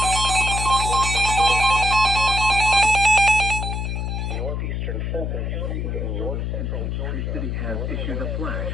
City has issued a flash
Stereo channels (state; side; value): noise; left; hum, 2 dB below the sound